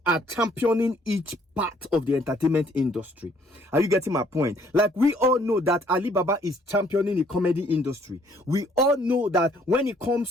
are championing each part of the entertainment industry. Are you getting my point? Like we all know that Alibaba is championing the comedy industry. We all know that when it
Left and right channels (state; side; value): normal; both; correlation 0.63